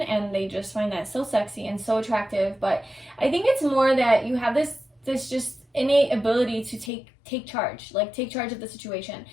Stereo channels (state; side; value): drops out; right; at 6.9 s